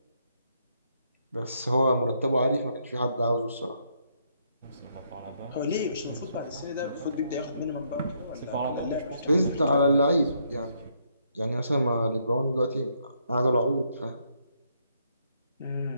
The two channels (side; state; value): both; inverted; correlation -0.73